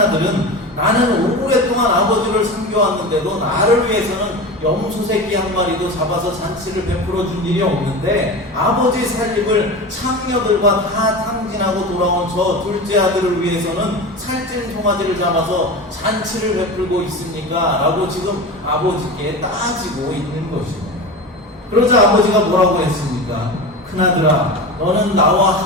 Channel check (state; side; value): normal; both; correlation 0.28